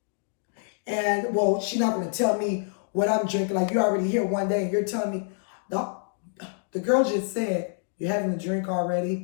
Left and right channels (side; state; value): right; silent; digital silence